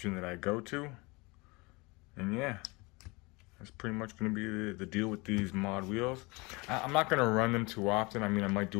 that I go to. And yeah, that's pretty much going to be the deal with these mod wheels. I'm not going to run them too often. I mean, I might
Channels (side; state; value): right; quieter; 25.9 dB